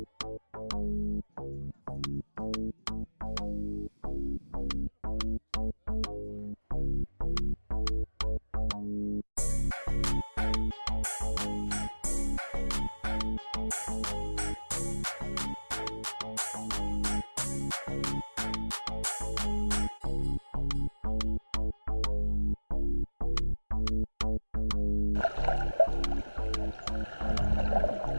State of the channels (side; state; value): both; inverted; correlation -1.00